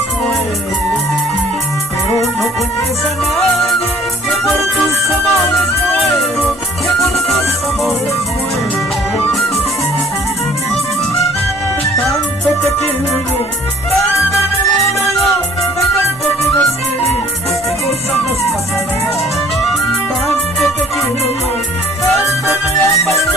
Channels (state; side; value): normal; both; correlation 0.55